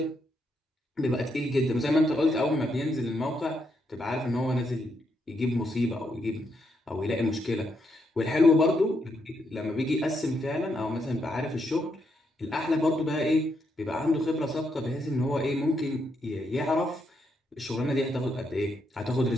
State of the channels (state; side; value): normal; both; correlation 0.79